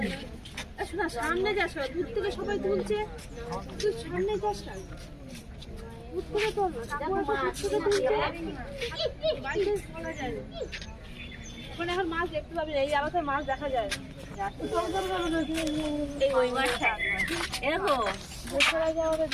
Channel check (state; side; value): identical; both; correlation 1.00